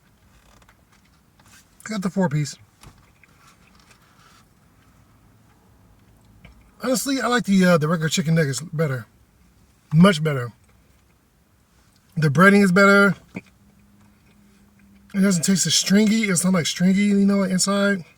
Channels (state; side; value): identical; both; correlation 1.00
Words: Got the 4-piece. Honestly, I like the regular chicken nuggets better. Much better. The breading is better. It doesn't taste as stringy. It's not like stringy, you know, like inside.